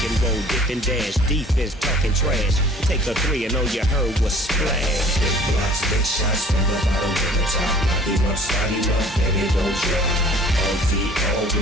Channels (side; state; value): both; normal; correlation 0.50